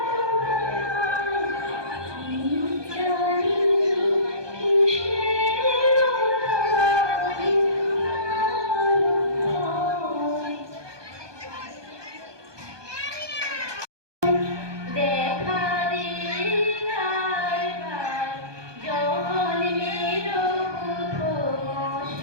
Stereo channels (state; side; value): late; left; 1.2 ms